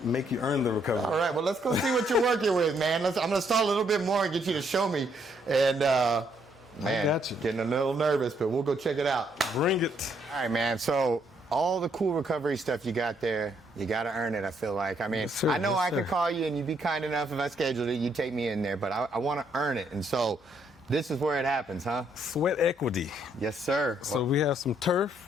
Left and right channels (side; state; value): both; normal; correlation 0.71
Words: make you earn the recovery. All right, well, let's go see what you're working with, man. I'm going to stall a little bit more and get you to show me. And, man, I got you. Getting a little nervous, but we'll go check it out. Bring it. All right, man. So all the cool recovery stuff you got there, you got to earn it, I feel like. I mean, yes, I know I could call you and you'd be kind enough if I scheduled it, you'd take me in there, but I want to earn it. And so this is where it happens, huh? Sweat equity. Yes, sir. So we have some